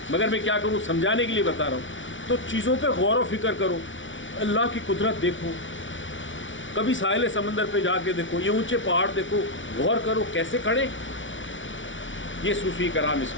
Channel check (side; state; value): right; late; 0.56 ms